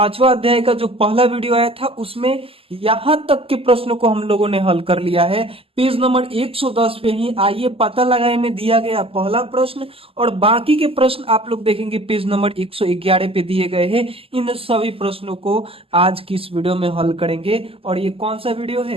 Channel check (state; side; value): late; left; 0.27 ms